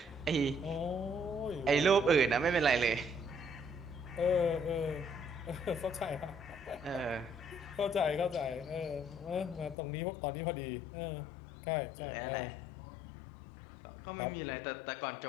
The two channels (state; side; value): drops out; right; at 9.8 s